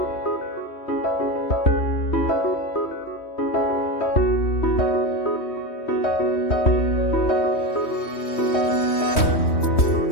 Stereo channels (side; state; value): right; late; 3.1 ms